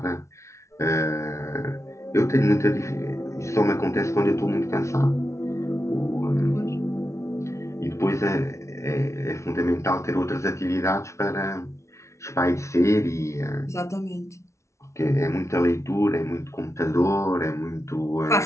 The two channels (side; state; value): right; late; 0.14 ms